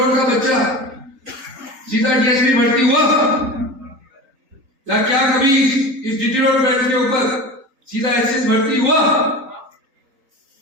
का बच्चा सीधा डीएसपी भर्ती हुआ? या क्या कभी इस जितरोड बेंच के ऊपर सीधा एसएस भर्ती हुआ?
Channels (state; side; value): late; left; 3.8 ms